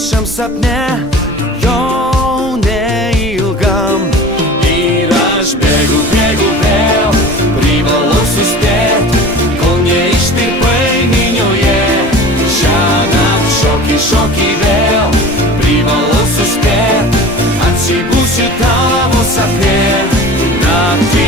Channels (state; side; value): normal; both; correlation 0.38